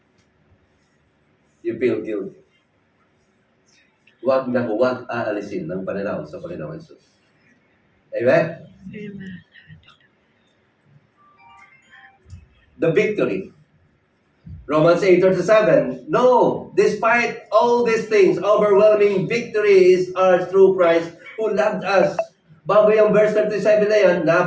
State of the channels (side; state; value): both; identical; correlation 1.00